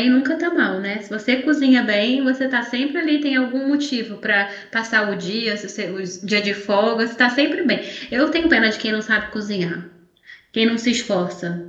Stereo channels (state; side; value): identical; both; correlation 1.00